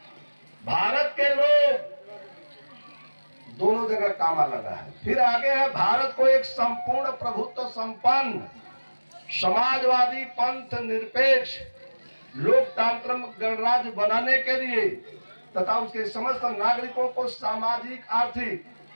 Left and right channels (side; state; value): both; inverted; correlation -1.00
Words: भारत के लोग, दोनों जगह कामा लगा है। फिर आगे है, भारत को एक संपूर्ण प्रभुत्व संपन्न समाजवादी पंथ निरपेक्ष लोकतांत्रिक गणराज्य बनाने के लिए तथा उसके समस्त नागरिकों को सामाजिक, आर्थिक,